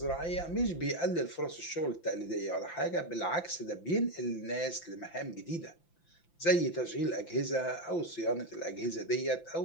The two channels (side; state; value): right; late; 5.9 ms